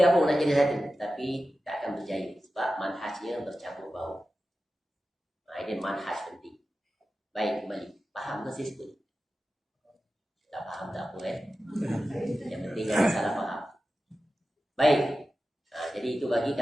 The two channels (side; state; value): both; normal; correlation 0.93